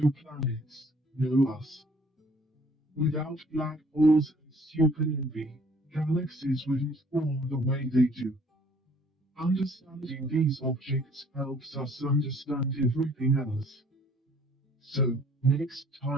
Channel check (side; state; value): both; normal; correlation 0.58